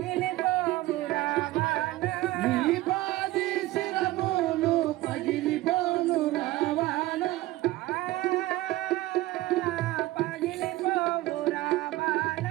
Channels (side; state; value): left; quieter; 17.4 dB